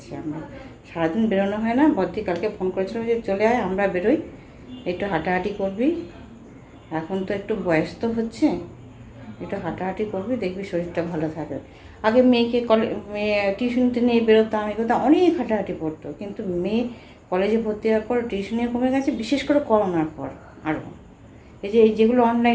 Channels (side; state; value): both; identical; correlation 1.00